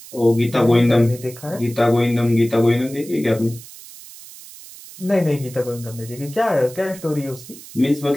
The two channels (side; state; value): right; noise; hiss, 17 dB below the sound